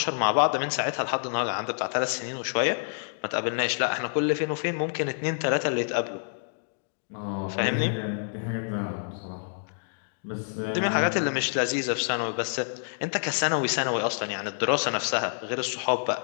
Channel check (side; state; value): right; silent; digital silence